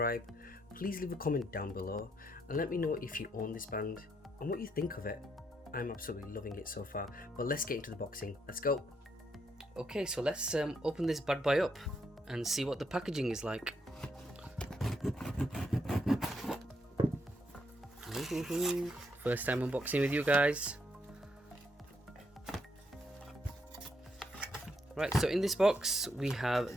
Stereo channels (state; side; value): normal; both; correlation 0.76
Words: Please leave a comment down below and let me know if you own this band and what you think of it. I'm absolutely loving it so far, but let's get into the boxing. Let's go. Okay, so let's open this bad boy up and see what the packaging is like. First time unboxing with you guys. Right, so in this box we have